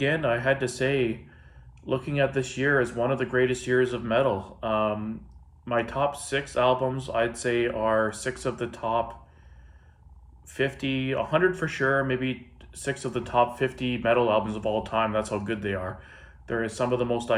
I had to say, looking at this year as one of the greatest years of metal. My top 6 albums, I'd say, are 6 of the top 50, 100 for sure, maybe 6 of the top 50 metal albums of all time. That's how good they are. There is some of the most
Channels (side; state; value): both; identical; correlation 1.00